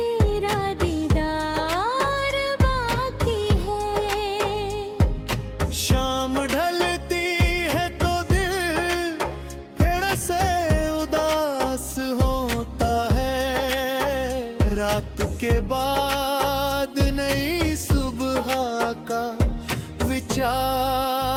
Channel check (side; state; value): both; identical; correlation 1.00